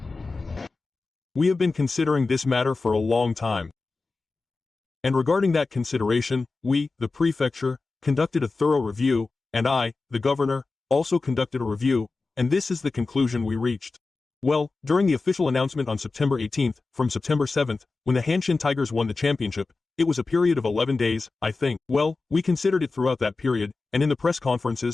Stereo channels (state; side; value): quieter; right; 3.8 dB